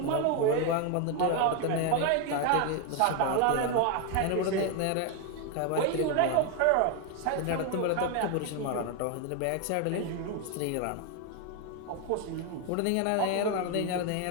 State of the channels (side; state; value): both; different; correlation 0.01